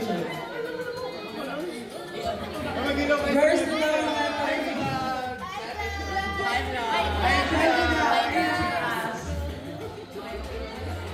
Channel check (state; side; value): identical; both; correlation 1.00